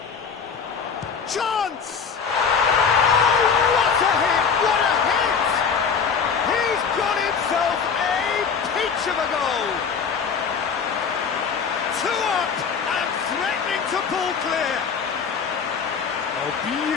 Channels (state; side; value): quieter; right; 6.2 dB